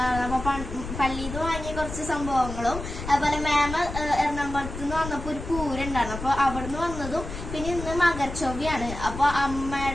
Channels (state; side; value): noise; left; rumble, 8 dB below the sound